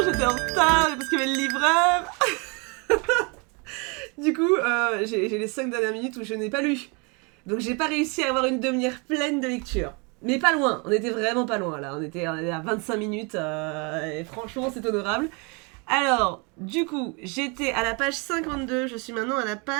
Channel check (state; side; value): quieter; left; 32.0 dB